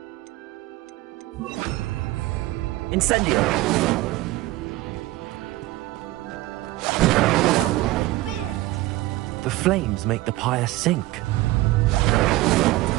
Incendio. The flames make the pyre sink.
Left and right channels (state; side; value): quieter; left; 18.0 dB